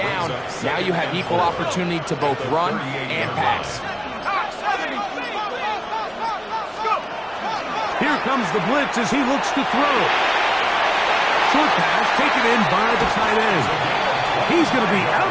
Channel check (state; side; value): identical; both; correlation 1.00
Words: Now you have equal opportunity to both run and pass. Here comes the blitz as he looks to throw. Short pass taken in by the tight end. He's going to be out